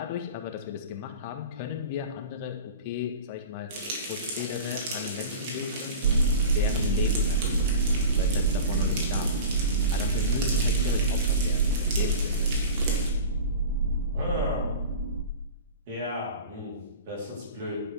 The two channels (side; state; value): both; inverted; correlation -0.34